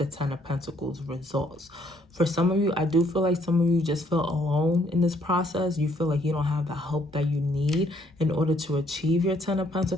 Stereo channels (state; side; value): normal; both; correlation 0.67